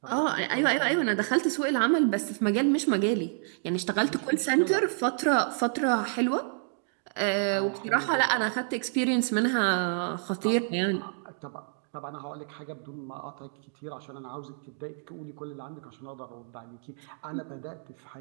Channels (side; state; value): left; silent; digital silence